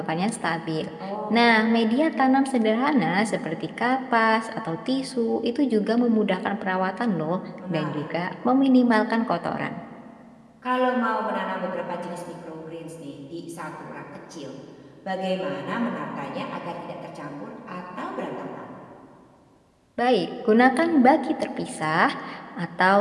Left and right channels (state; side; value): identical; both; correlation 1.00